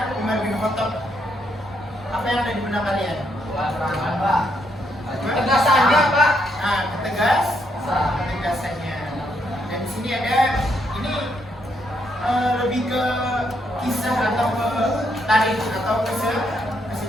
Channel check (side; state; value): both; normal; correlation 0.76